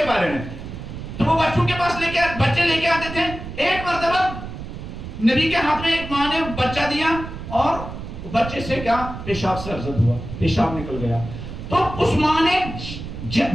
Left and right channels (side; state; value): right; noise; rumble, 10 dB below the sound